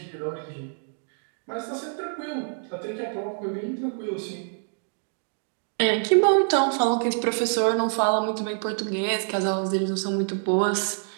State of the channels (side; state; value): left; silent; digital silence